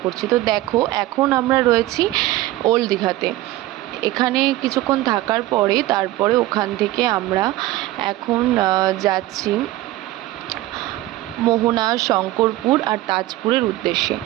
করছি। তো দেখো, এখন আমরা রয়েছি ওল্ড দীঘাতে। এখানে কিছুক্ষণ থাকার পরে তারপরে ওখান থেকে আমরা এখন যাচ্ছি মোহনা, শঙ্করপুর আর তাজপুরের উদ্দেশ্যে।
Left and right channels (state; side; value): quieter; left; 16.6 dB